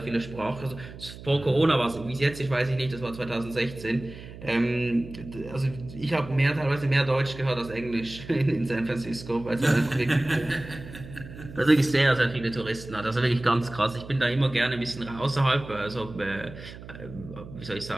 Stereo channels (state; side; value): noise; right; hum, 14 dB below the sound